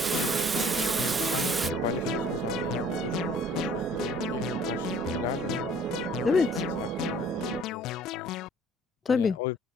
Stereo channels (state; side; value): normal; both; correlation 0.55